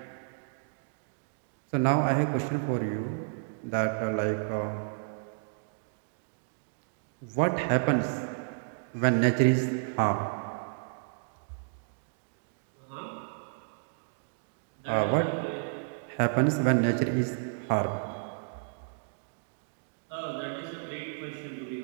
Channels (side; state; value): left; silent; digital silence